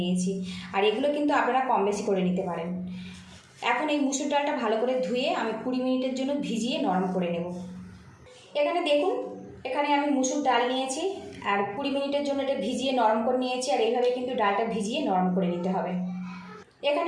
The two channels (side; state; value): both; identical; correlation 1.00